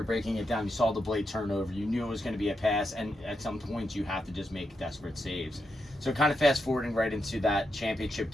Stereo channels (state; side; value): normal; both; correlation 0.84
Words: breaking it down, you saw the blade turnover, you knew it was going to be a pass, and at some points you have to just make desperate saves. So kind of fast forwarding right into that championship